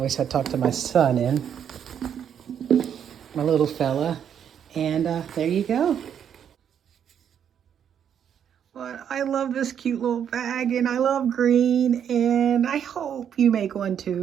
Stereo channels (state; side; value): quieter; left; 8.6 dB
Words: I talked to my son in. My little fella. And there you go. But I love this cute little bag, and I love green, and I hope you make one